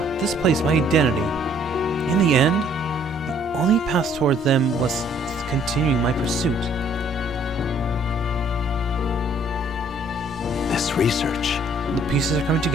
this place, my identity. In the end, the only path toward them was continuing my pursuit. this research. The pieces are coming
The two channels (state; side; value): normal; both; correlation 0.61